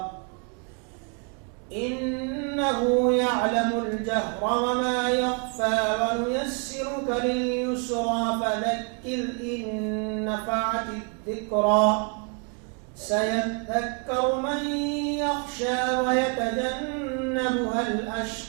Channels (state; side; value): quieter; left; 37.3 dB